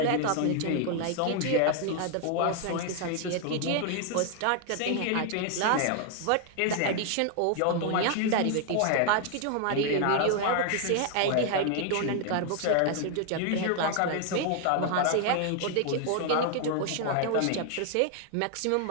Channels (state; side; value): different; both; correlation 0.00